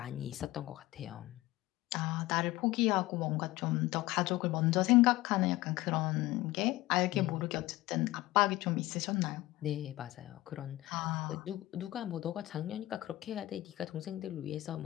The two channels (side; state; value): right; quieter; 17.9 dB